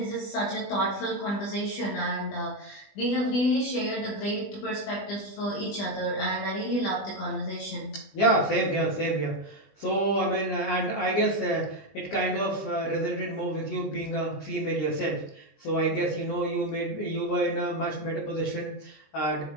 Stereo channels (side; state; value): right; late; 20 ms